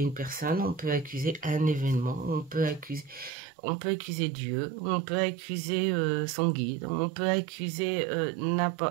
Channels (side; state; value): left; drops out; at 3.3 s